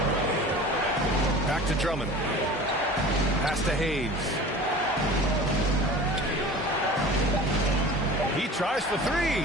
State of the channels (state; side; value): normal; both; correlation 0.40